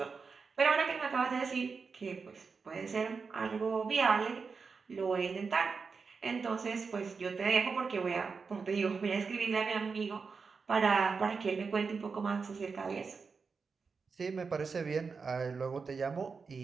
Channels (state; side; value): quieter; left; 5.1 dB